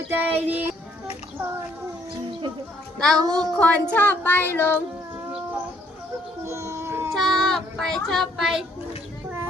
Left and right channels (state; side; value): normal; both; correlation 0.66